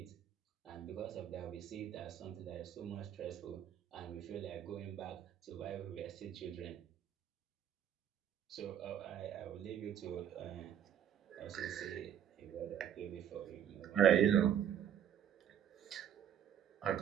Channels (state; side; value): quieter; left; 9.6 dB